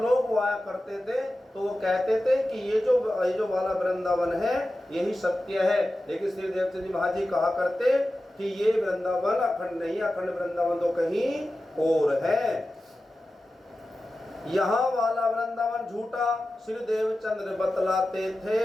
आया करते थे तो वो कहते थे कि ये जो वाला वृंदावन है यही सत्य है, लेकिन श्री देवचंद जी महाराज जी कहा करते कि ये वृंदावन अखंड नहीं, अखंड वृंदावन तो कहीं और है। यहाँ वाला वृंदावन झूठा श्री देवचंद्र बतलाते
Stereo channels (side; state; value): both; normal; correlation 0.94